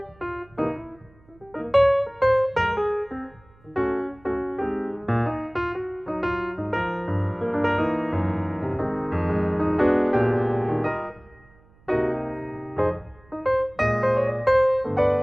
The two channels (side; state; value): right; noise; hum, 29 dB below the sound